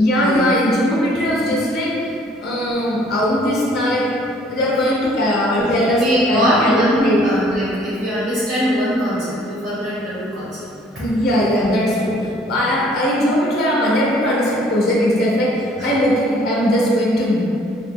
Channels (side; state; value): both; normal; correlation 0.58